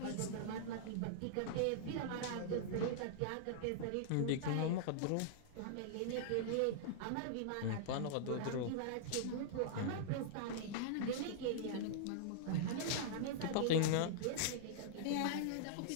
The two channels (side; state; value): both; different; correlation -0.01